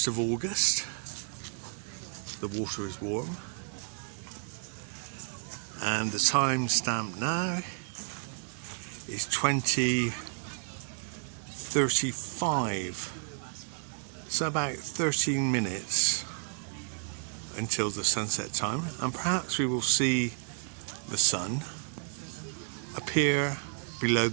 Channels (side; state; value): left; silent; 57 dB below the other